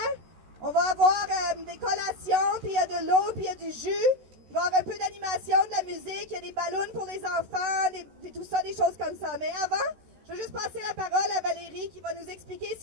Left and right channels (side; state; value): left; late; 14 ms